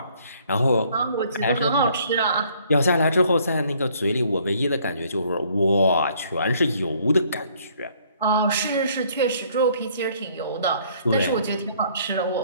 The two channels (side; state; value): both; inverted; correlation -0.62